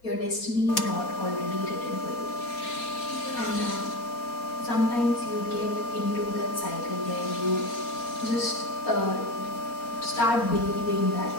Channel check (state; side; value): late; right; 4.3 ms